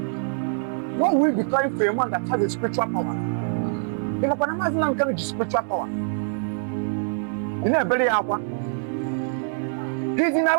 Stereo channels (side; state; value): left; silent; digital silence